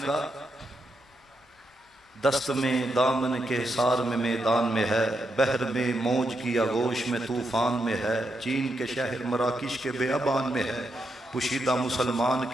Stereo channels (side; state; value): both; normal; correlation 0.82